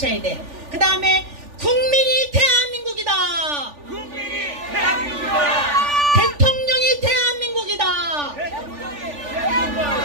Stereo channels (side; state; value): left; late; 3.4 ms